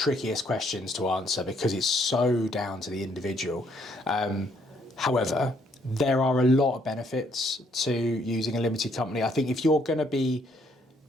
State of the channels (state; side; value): normal; both; correlation 0.69